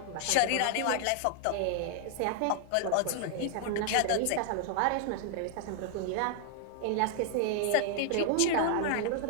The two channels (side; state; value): both; different; correlation 0.00